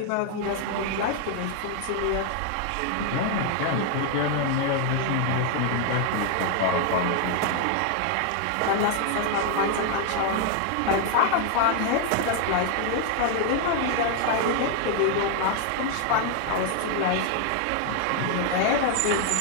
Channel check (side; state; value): both; different; correlation 0.00